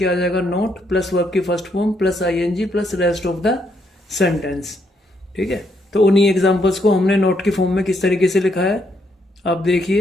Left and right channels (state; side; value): normal; both; correlation 0.75